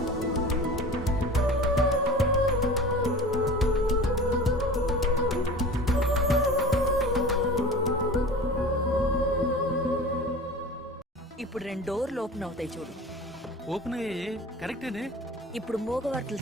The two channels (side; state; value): both; normal; correlation 0.37